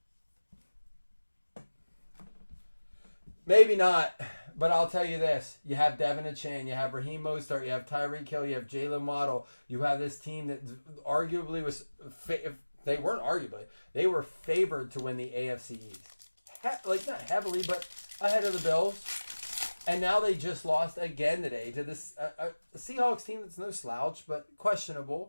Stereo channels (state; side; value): inverted; both; correlation -1.00